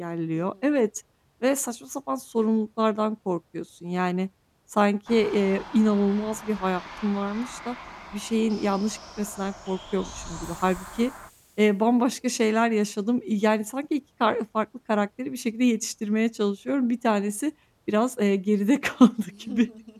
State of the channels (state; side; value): identical; both; correlation 1.00